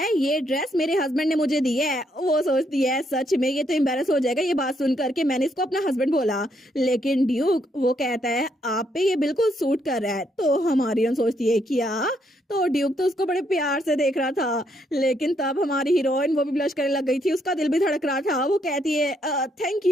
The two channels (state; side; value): normal; both; correlation 0.74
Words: ये ड्रेस मेरे हस्बैंड ने मुझे दी है। वो सोचती है सच में ये तो एम्बेरस हो जाएगा ये बात सुन करके मैंने इसको अपना हस्बैंड बोला। लेकिन ड्यूक वो कहता है आप पे ये बिल्कुल सूट कर रहा है। तो हमारी सोचती है क्या? तो ड्यूक तो उसको बड़े प्यार से देख रहा था, लेकिन तब हमारी हीरोइन वो भी ब्लश करने लग गई थी, उसका दिल भी धड़क रहा था। वो कहती है थैंक